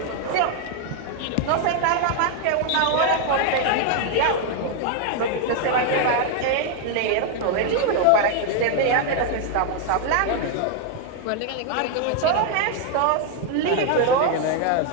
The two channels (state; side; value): different; both; correlation 0.01